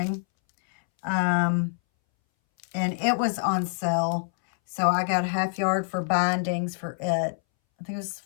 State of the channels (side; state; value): right; silent; 61 dB below the other